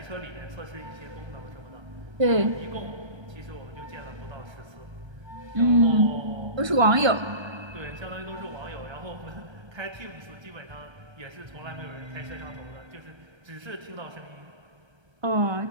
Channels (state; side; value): late; left; 1.3 ms